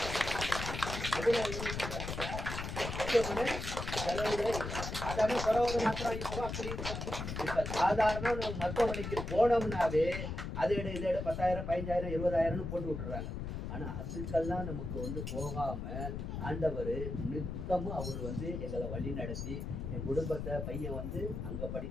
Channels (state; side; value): noise; left; rumble, 5 dB below the sound